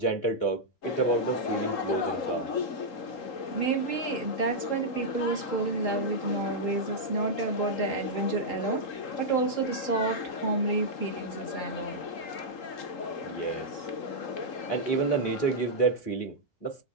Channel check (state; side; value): late; right; 3.8 ms